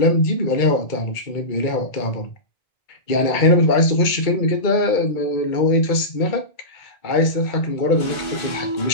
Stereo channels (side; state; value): right; late; 2.2 ms